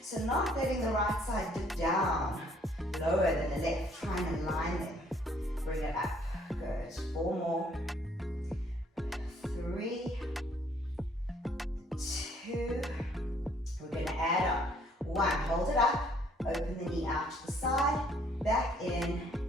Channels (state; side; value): normal; both; correlation 0.63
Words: So not letting the right side dip down lower than the left. Trying to line them. Bring it up. Good. 4 more. 3, 2. We're going to add up. 1. Hold it up. Open the knee out to the side. Back in